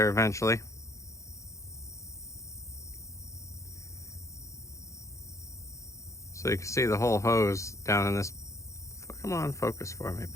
eventually. So you can see the whole hose down in this. Come on, focus for me,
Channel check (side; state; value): right; late; 0.15 ms